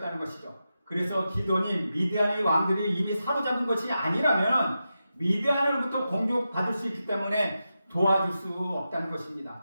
것이죠. 그래서 기드온이 미디안의 왕들이 이미 사로잡은 것이 아니라면 미디안으로부터 공격받을 수 있기 때문에 도와줄 수 없다는 것입니다.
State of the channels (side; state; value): both; inverted; correlation -0.90